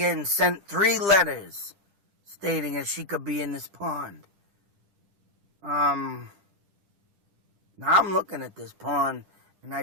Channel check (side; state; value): left; late; 10 ms